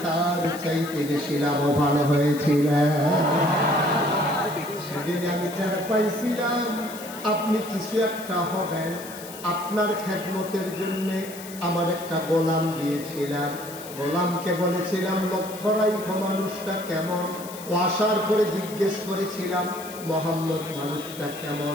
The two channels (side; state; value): left; noise; hiss, 15 dB below the sound